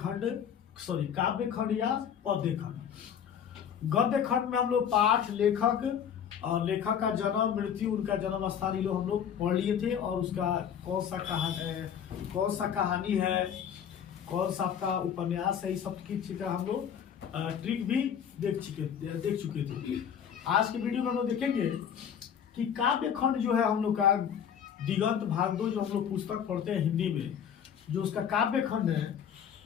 खंड या पद्य खंड। गद्य खंड में हम लोग पाठ, लेखक और लेखक का जन्म, मृत्यु, उनका जन्म स्थान ये लोग हम लोग पढ़ लिए थे और उसका कौन सा कहानी है, कौन सा आपका उपन्यास है, इस सब की चीज का हम लोग ट्रिक भी देख चुके थे। आज के वीडियो में हम लोग देखेंगे कि काव्य खंड जो है हम लोग का दिगंत भागवत जो हम लोग पुस्तक पढ़ते हैं हिंदी में, जो उसका काव्य खंड है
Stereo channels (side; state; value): right; quieter; 8.4 dB